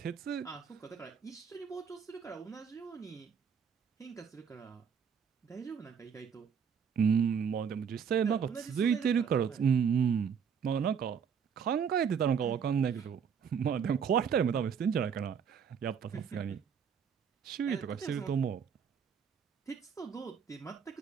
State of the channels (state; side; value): quieter; left; 7.0 dB